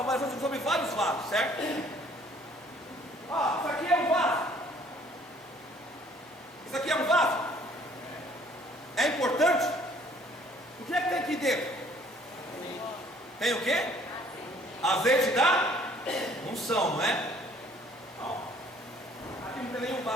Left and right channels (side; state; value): both; normal; correlation 0.58